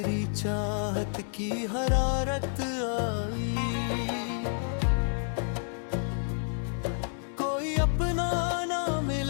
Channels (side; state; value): right; silent; digital silence